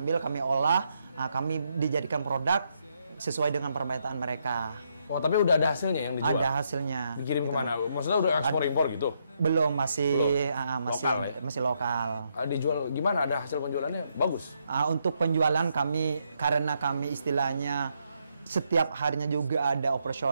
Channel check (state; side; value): inverted; both; correlation -0.77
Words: kami olah, kami dijadikan produk sesuai dengan permintaan mereka. Oh, tapi udah ada hasilnya yang dijual? Ada hasilnya. Dikirim kemana? Maksudnya udah ekspor-impor gitu? Belum, masih lokal. Dijual gimana? Ada hasil penjualannya? Bagus? Untuk penjualan karena kami istilahnya setiap harinya juga ada